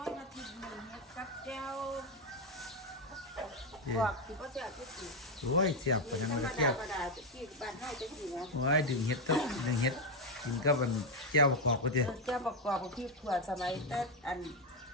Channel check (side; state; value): both; normal; correlation 0.06